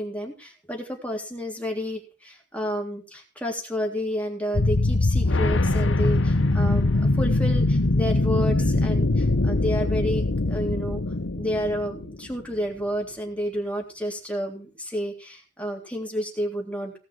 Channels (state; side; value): normal; both; correlation 0.79